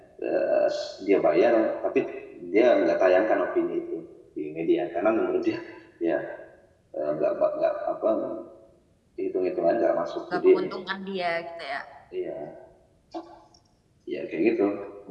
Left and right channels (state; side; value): identical; both; correlation 1.00